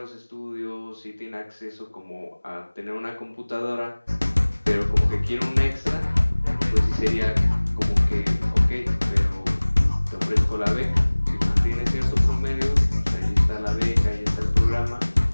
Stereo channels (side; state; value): both; inverted; correlation -1.00